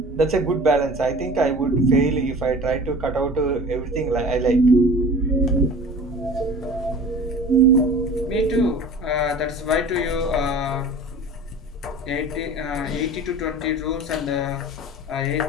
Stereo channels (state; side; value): normal; both; correlation 0.41